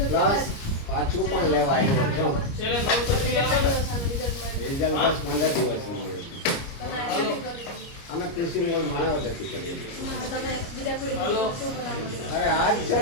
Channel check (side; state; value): right; late; 30 ms